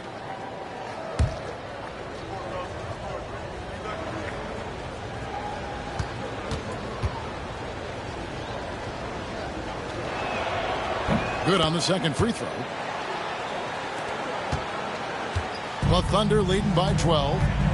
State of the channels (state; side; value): identical; both; correlation 1.00